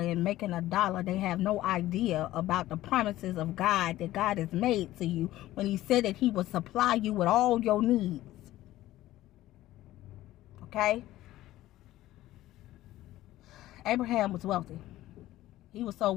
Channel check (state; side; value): quieter; right; 15.3 dB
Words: and making a dollar, they have no idea about the promises of God that God has made to you when he said that he will supply you with all your needs. Okay? Abraham was wealthy. He was so